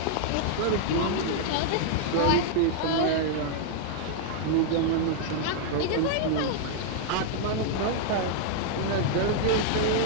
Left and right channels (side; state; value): both; different; correlation -0.01